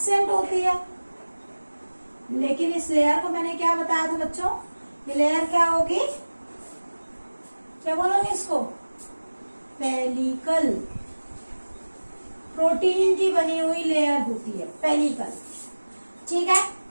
होती है, लेकिन इस लेयर को मैंने क्या बताया था बच्चों, ये लेयर क्या होगी, क्या बोलोगे इसको, पेलिकल। प्रोटीन की बनी हुई लेयर होती है पेलिकल। ठीक है,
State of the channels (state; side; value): inverted; both; correlation -1.00